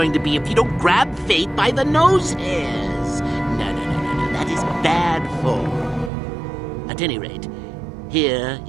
to be if you don't grab fate by the nose hairs? No. That is bad form. At any rate, here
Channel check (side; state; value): left; drops out; at 6.1 s